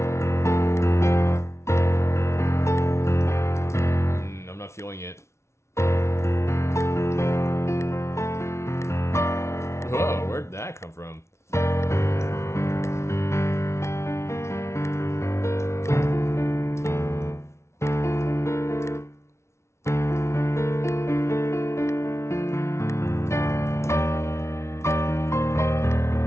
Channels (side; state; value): right; late; 0.13 ms